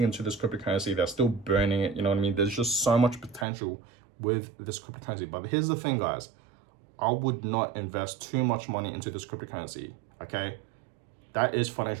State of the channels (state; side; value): drops out; left; at 3.5 s